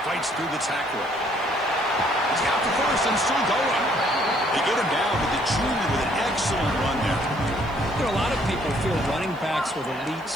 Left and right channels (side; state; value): right; noise; hiss, 29 dB below the sound